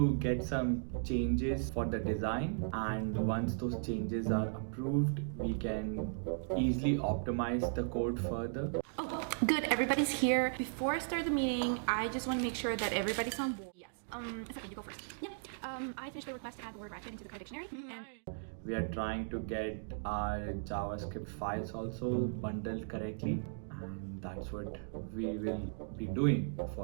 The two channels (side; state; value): left; silent; digital silence